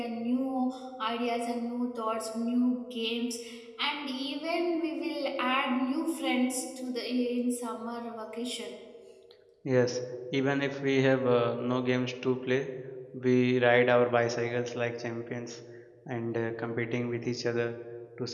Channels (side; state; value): both; identical; correlation 1.00